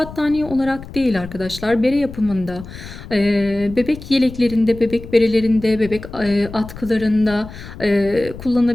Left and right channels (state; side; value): noise; left; rumble, 14 dB below the sound